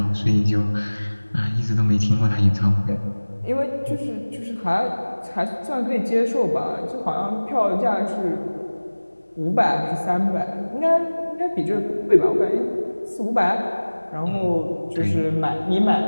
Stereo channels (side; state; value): both; inverted; correlation -1.00